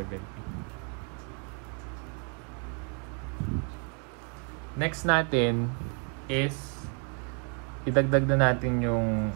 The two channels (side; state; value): left; quieter; 37.7 dB